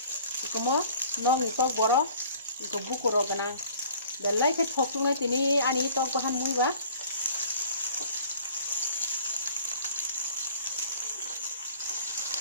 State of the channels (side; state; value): both; inverted; correlation -0.50